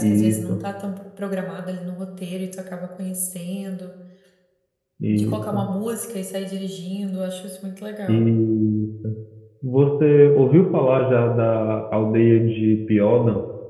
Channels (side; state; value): both; identical; correlation 1.00